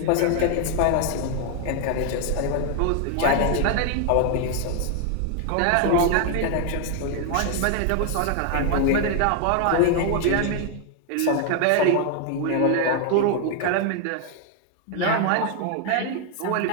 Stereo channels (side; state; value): both; different; correlation 0.00